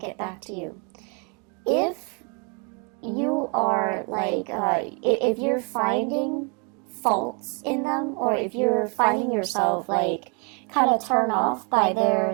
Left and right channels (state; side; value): quieter; left; 34.9 dB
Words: back to you. If you are like, if you're finding faults in them, or if you're finding yourself like kind of turned off by their